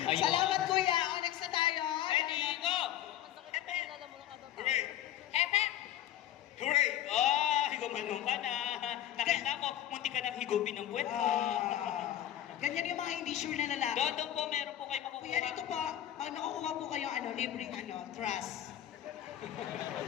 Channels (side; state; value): right; quieter; 12.0 dB